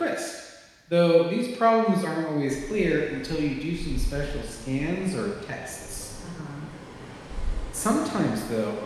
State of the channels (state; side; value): identical; both; correlation 1.00